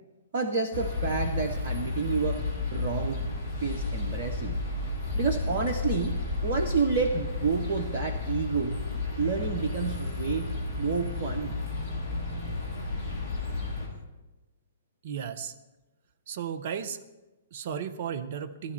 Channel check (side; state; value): both; inverted; correlation -0.52